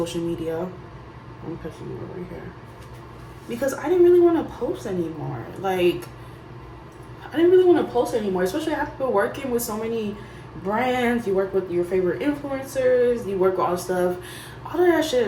media. I'm pushing you over here because I didn't really want to post anymore. Like, I didn't really want to post anymore, especially after working with so many brands. You work with your favorite influencers, you work with all stuff. All of that shit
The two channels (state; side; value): identical; both; correlation 1.00